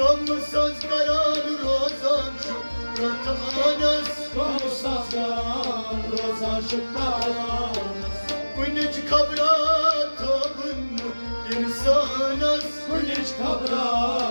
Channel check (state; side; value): inverted; both; correlation -1.00